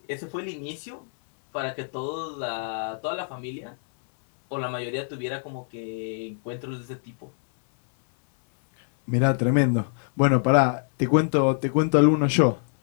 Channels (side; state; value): right; silent; 61 dB below the other